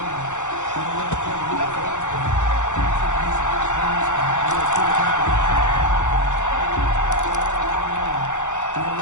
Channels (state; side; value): late; right; 0.85 ms